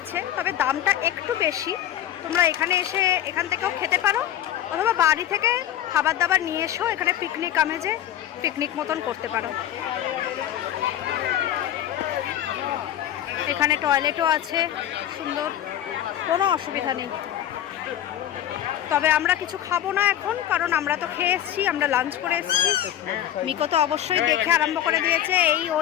তবে দামটা একটু বেশি। তোমরা এখানে এসে এখান থেকেও খেতে পারো, অথবা বাড়ি থেকে খাবার দাবার নিয়ে এসেও এখানে পিকনিক আমেজে পিকনিক মতন করতে পারো। এখানে টয়লেটও আছে, সুন্দর, কোনো অসুবিধা নেই। তবে আমরা কিছু খাবো না এখন, কারণ আমরা তো খেয়ে এসেছি, আমরা লাঞ্চ করে এসেছি। মিকো তো অবশ্যই দেখে আরম্ভ করে দিয়েছে, এই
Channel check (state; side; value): quieter; right; 11.5 dB